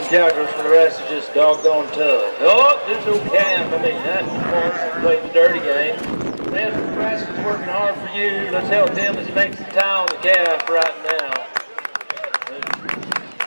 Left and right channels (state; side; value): inverted; both; correlation -1.00